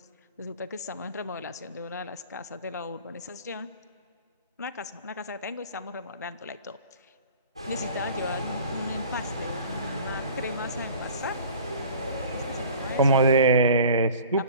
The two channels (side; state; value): both; inverted; correlation -0.45